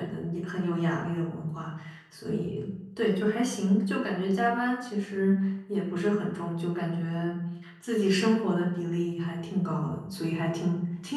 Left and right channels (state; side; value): identical; both; correlation 1.00